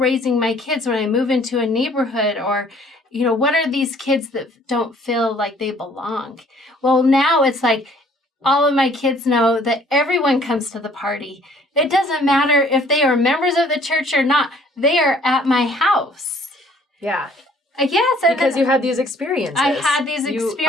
my kids when I move into a neighborhood, or, what are these kids that don't feel like they belong? Well, now it's like all of my kids know that everyone comes to the party. It doesn't matter if they are members of the church or not. They are at my house. Yeah. Yes. Because you had these experiences. I had these experiences. You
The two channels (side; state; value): both; normal; correlation 0.58